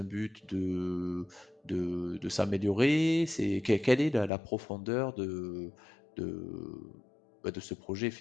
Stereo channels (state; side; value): drops out; right; at 4.3 s